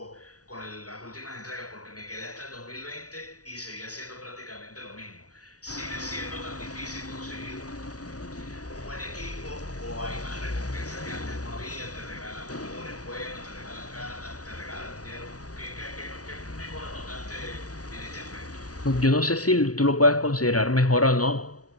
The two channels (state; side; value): late; right; 0.68 ms